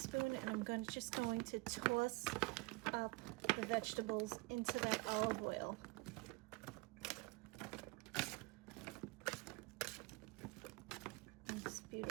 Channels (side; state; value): left; quieter; 25.2 dB